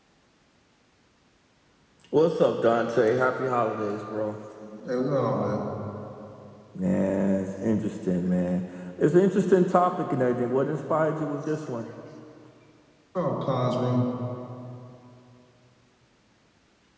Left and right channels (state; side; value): identical; both; correlation 1.00